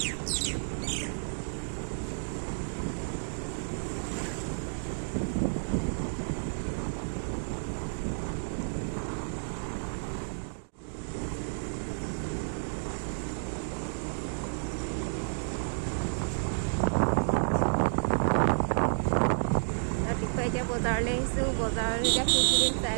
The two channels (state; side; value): silent; left; digital silence